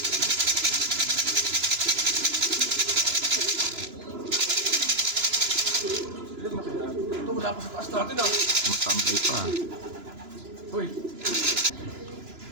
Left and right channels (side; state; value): left; late; 2.9 ms